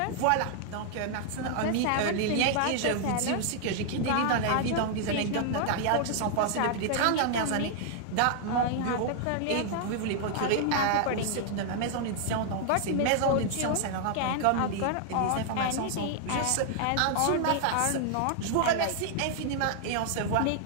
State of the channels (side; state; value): both; different; correlation 0.00